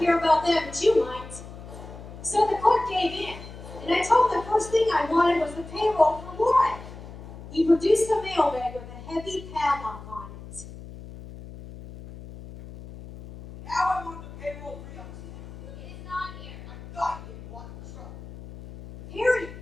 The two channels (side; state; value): left; noise; hum, 14 dB below the sound